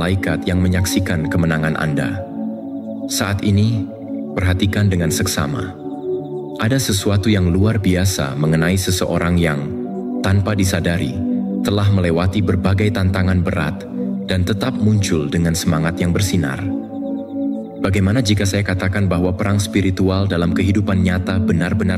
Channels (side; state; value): both; identical; correlation 1.00